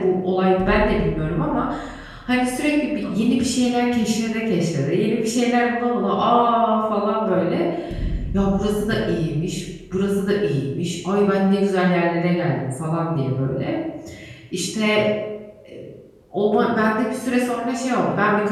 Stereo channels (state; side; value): identical; both; correlation 1.00